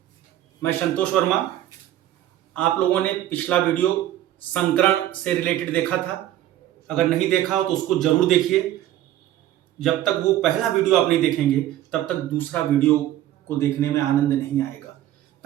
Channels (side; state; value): left; quieter; 13.1 dB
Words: मैं संतोष वर्मा। आप लोगों ने पिछला वीडियो संकरण से रिलेटेड देखा था। अगर नहीं देखा हो तो उसको जरूर देखिए। जब तक वो पहला वीडियो आप नहीं देखेंगे तब तक दूसरा वीडियो को देखने में आनंद नहीं आएगा।